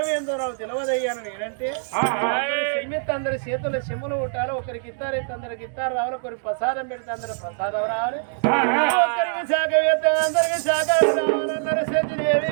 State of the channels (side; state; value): left; silent; digital silence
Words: నాకు తెలియదయ్యాను నేనంటే చెమ్మెత్తి అందరి చేతుల్లో చెమ్ములు ఉంటారు. ఒకరికి ఇస్తారైతే అందరికి ఇస్తారు రావాలి, ఒకరికి ప్రసాదం పెడితే అందరు ప్రసాదం రావాలి, ఒకరికి శాఖ వేస్తే అందరికి శాఖ రావాలన్నారు.